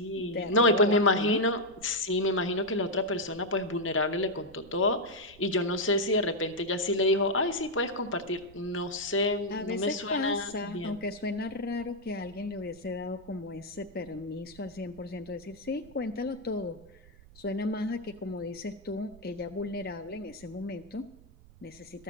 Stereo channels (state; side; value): noise; right; rumble, 23 dB below the sound